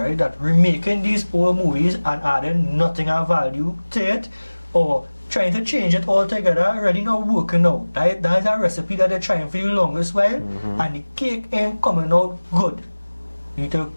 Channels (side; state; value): both; inverted; correlation -1.00